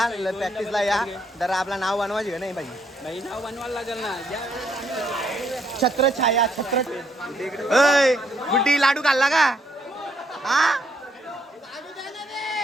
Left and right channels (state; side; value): normal; both; correlation 0.72